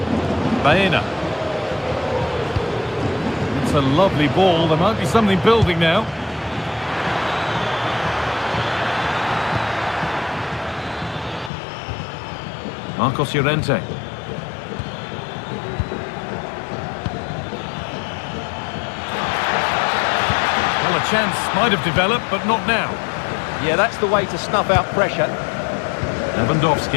Baena. It's a lovely ball. There might be something building now. Marcos Llorente. Well, a chance might have developed, but not now. Yeah, that's the way to snuff out pressure.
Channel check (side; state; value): right; drops out; at 11.5 s